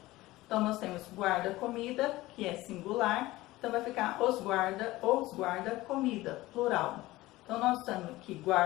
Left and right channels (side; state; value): right; quieter; 18.2 dB